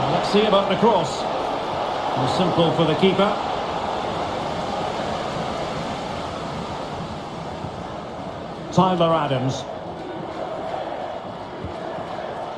Let's see about the cross. More simple for the keeper. Tyler Adams.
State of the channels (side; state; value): both; identical; correlation 1.00